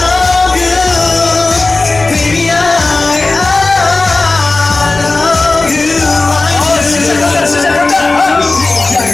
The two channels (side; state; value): right; quieter; 3.4 dB